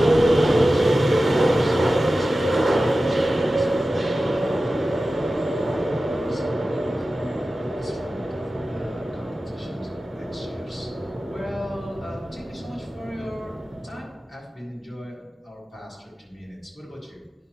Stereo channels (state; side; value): normal; both; correlation 0.94